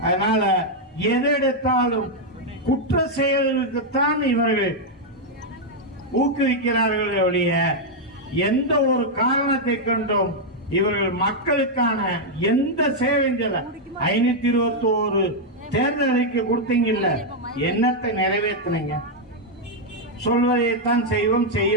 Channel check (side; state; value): both; normal; correlation -0.01